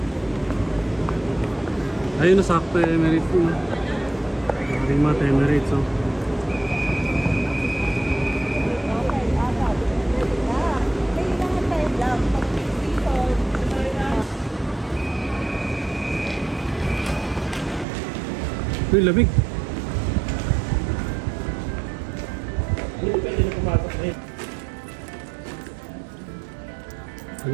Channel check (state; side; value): drops out; left; at 17.9 s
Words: Ayun na sakto yung Emirates mo. Maring mata Emirates oh. Kailangan tayo lang. Uy, lamig. Pwede na pumatok na eh. Ano